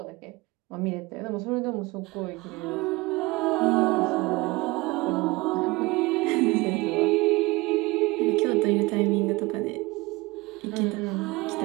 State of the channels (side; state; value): left; quieter; 22.6 dB